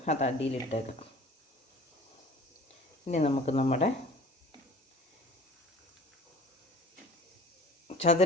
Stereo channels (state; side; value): normal; both; correlation 0.46